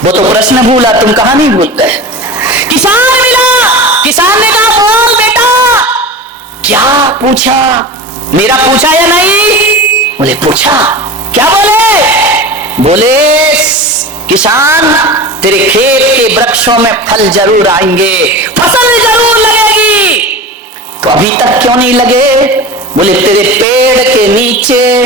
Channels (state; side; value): normal; both; correlation 0.30